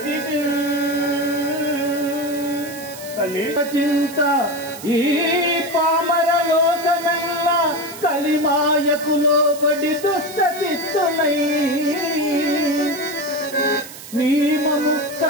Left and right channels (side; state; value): right; noise; hiss, 15 dB below the sound